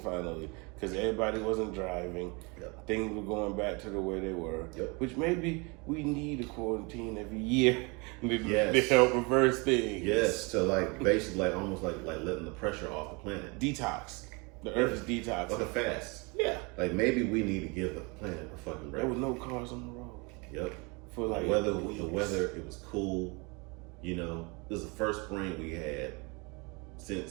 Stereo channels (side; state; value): left; quieter; 29.1 dB